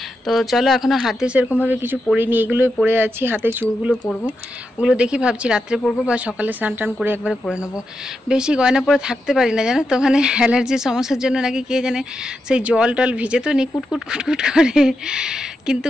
তো চলো এখনও হাতে সেরকমভাবে কিছু পরিনি, এগুলোই পরে আছি। হাতে চুড়গুলো পরবো, ওগুলো দেখি ভাবছি রাত্রে পরবো বা সকালে স্নান টান করে একবারে পরে নেবো। বেশি গয়না পরে থাকতে পারি না জানো তো, ওখানে অ্যালার্জির সমস্যার জন্য নাকি কে জানে সেই জল টল ভিজে তো নি কুটকুট কুটকুট করে, কিন্তু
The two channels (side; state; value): both; normal; correlation 0.86